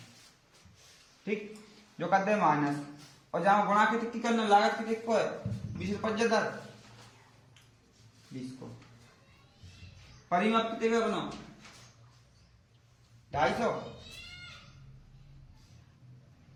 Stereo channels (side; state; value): both; identical; correlation 1.00